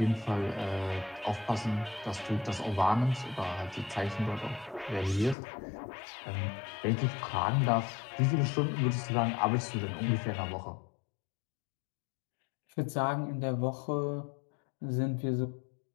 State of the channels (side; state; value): right; drops out; at 5.4 s